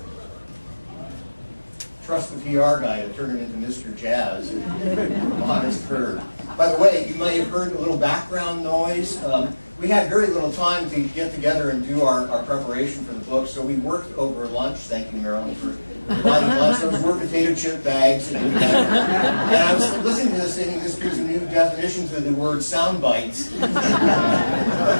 Trust the PR guy to turn it into Mr. Jazz. Honest Herb. By the way, you may have heard a little background noise. We had very little time to get together and do our preparation for the book, so we worked over lunch. Thank you, Marilyn, for providing lots of were potato chip bags. And I was listening to this thinking this gives a new definition to the word sound bites.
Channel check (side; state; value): both; inverted; correlation -1.00